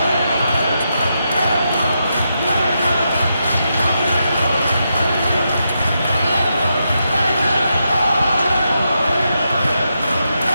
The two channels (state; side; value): inverted; both; correlation -0.84